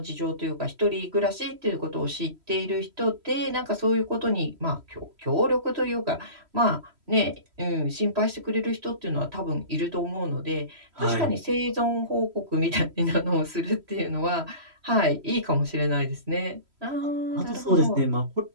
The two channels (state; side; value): late; left; 3.1 ms